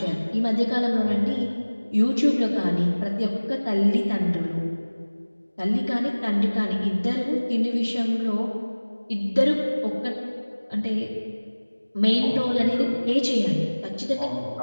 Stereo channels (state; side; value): inverted; both; correlation -1.00